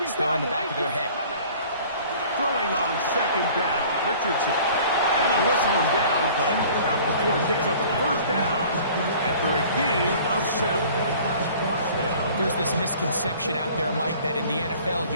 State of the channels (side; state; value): both; inverted; correlation -0.49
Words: still in the back of their head. Throwing on 2nd down, Richardson. And they'll whistle him down, but not before it picks up a 1st down after a gain of 7. There's this misconception out there, Mike, that in the NFL